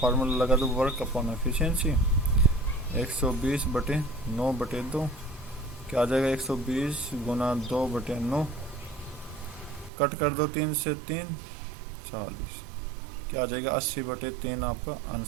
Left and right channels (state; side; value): drops out; left; at 9.9 s